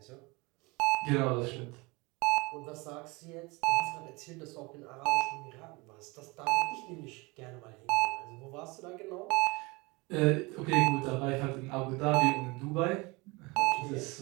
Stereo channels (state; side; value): quieter; left; 25.5 dB